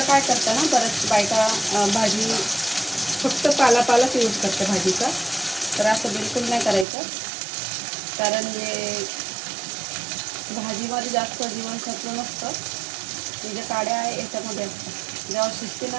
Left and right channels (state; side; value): drops out; left; at 6.9 s